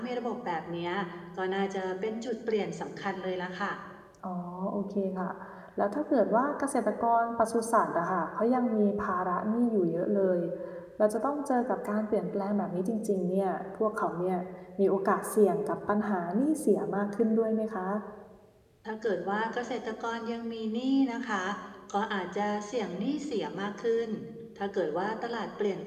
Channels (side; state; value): both; identical; correlation 1.00